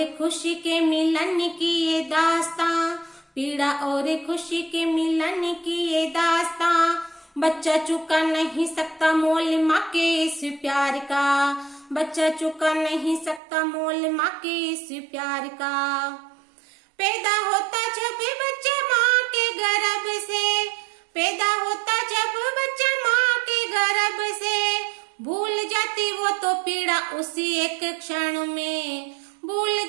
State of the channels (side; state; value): left; drops out; at 13.4 s